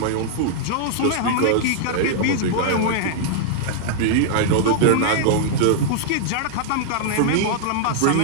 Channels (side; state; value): both; different; correlation -0.01